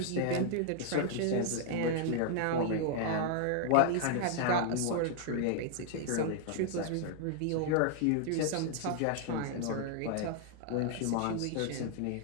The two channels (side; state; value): both; different; correlation -0.01